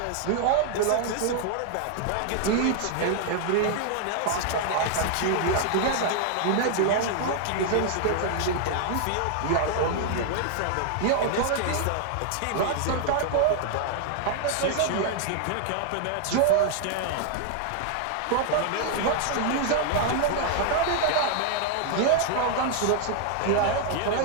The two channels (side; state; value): both; different; correlation 0.00